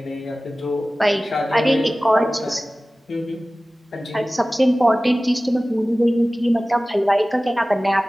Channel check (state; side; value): normal; both; correlation 0.97